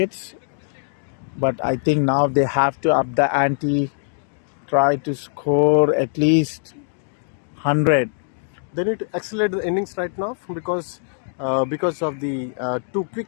But I think now they have to up the ante, try to score at least 100. They need to accelerate the innings right now because of the 2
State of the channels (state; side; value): silent; right; digital silence